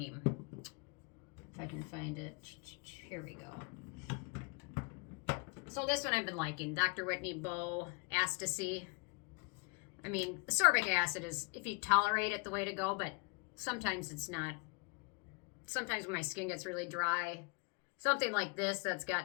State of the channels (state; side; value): quieter; right; 32.8 dB